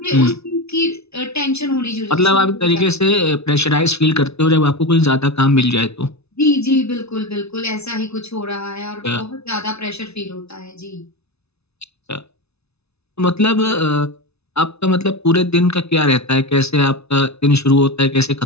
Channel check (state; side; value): late; right; 0.80 ms